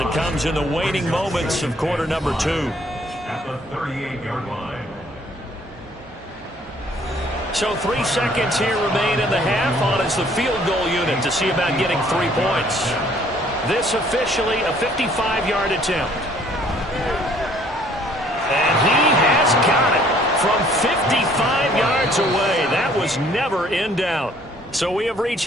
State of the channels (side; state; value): both; normal; correlation 0.60